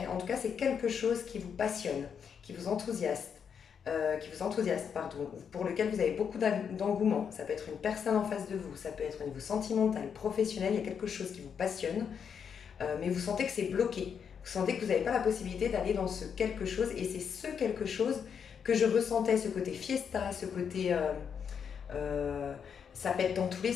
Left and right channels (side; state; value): right; quieter; 7.2 dB